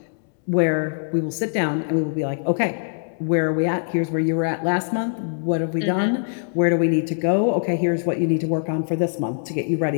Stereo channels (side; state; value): right; silent; digital silence